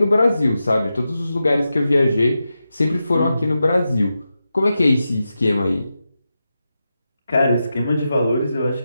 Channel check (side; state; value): both; inverted; correlation -0.90